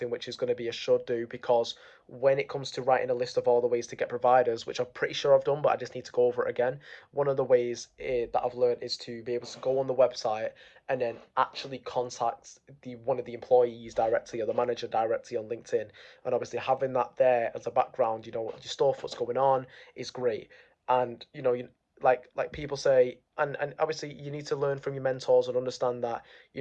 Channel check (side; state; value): both; identical; correlation 1.00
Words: which is going to be a should do because when it comes to writing a list of all the ways to get providers, which I'm pretty sure I've done, but I just need to go over it again. One of the ways that I've learned is to be able to go on the website and then actually contact the one of the employees directly or the manager directly on LinkedIn. And obviously having that there as a background, your stuff, what's going on, is great. And like people say, and obviously you need to learn from your mentors and understand that